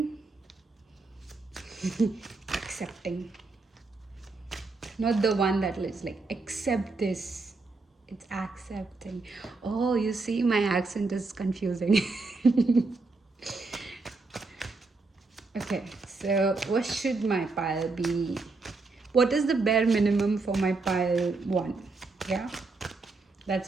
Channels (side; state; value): left; quieter; 3.7 dB